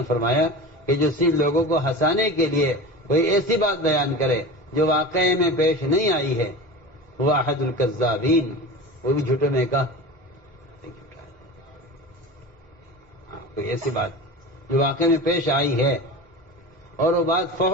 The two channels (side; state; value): both; normal; correlation 0.32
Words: فرمایا کہ جو صرف لوگوں کو ہنسانے کے لیے کوئی ایسی بات بیان کرے جو واقعے میں پیش نہیں آئی ہے وہ احد الکذابین، وہ بھی جھوٹے میں کا کوئی ایسی بات جو واقعے میں پیش آئی ہے اور وہ بات